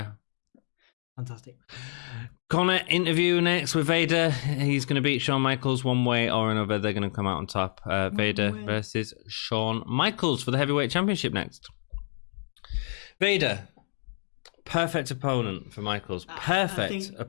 fantastic. Connor interview next with Vader. He's going to beat Shawn Michaels one way or another. They're going to come out on top. Vader versus Shawn Michaels for the heavyweight championship next. Vader, perfect opponent for Michaels.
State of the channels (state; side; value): silent; right; digital silence